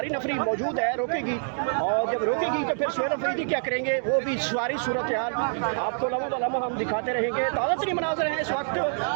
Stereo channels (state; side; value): silent; left; digital silence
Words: नफरी मौजूद है, रोकेगी। और जब रोकेगी तो फिर सुहेल अफरीदी क्या करेंगे, वो भी सारी सूरत हाल आपको लम्हा ब लम्हा हम दिखाते रहेंगे। ताज़ा तरीन मनाज़िर हैं इस वक्त